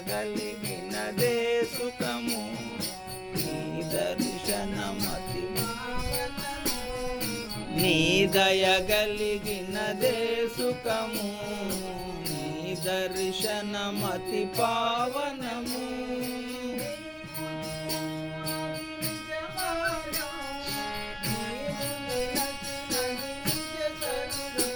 కలిగినదే సుఖము నీ దర్శనమతి నీ దయ కలిగినదే సుఖము నీ దర్శనమతి పావనము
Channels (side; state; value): both; identical; correlation 1.00